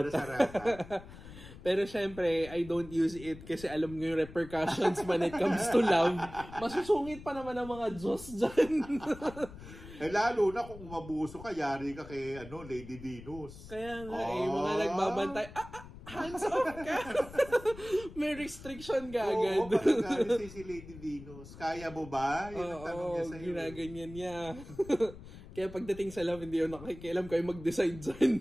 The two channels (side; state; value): left; noise; rumble, 16 dB below the sound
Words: Pero syempre, I don't use it kasi alam nyo yung repercussions when it comes to love. Masusungit pa naman ang mga Diyos dyan. Lalo na kung umabuso ka, yari ka kay Lady Venus. Kaya nga mga nagbabantay, hands off ka! May restriction ka agad. Pagkakalit si Lady Venus. Kaya mo ba? Yun ang tanong niya sa'yo. Ginaganyan niya. Kaya pagdating sa love, hindi yun nakikialam kayo mag-decide